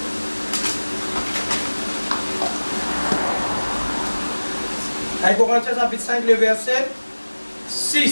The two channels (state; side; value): inverted; both; correlation -1.00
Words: Corinthiens chapitre 5, le verset